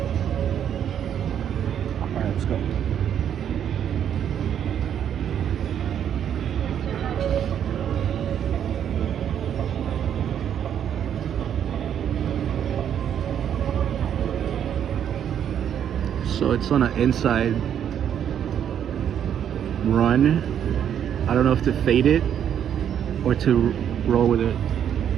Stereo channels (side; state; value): left; quieter; 9.3 dB